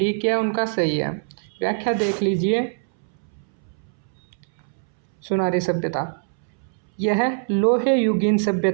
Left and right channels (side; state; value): left; silent; 63 dB below the other